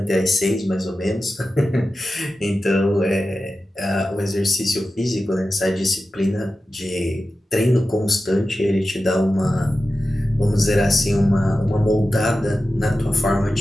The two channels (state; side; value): normal; both; correlation 0.93